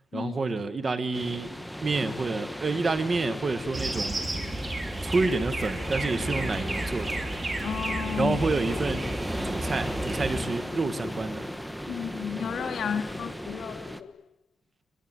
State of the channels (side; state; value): both; normal; correlation 0.90